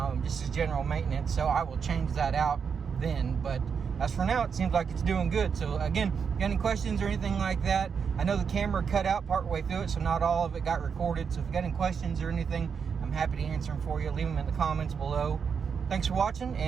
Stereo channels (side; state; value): left; quieter; 6.4 dB